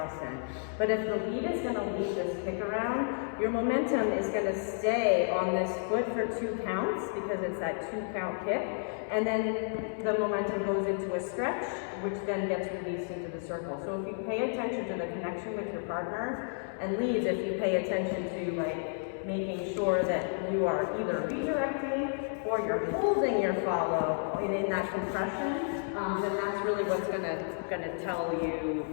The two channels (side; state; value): right; silent; digital silence